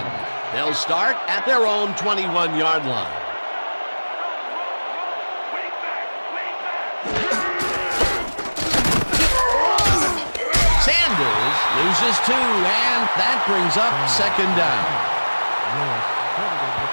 They'll start at their own 21-yard line. Sanders Loses 2, and that brings up second down. Lewis credited with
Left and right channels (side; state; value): both; inverted; correlation -1.00